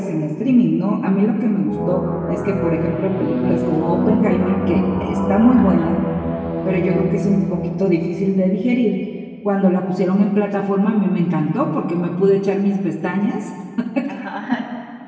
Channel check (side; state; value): both; identical; correlation 1.00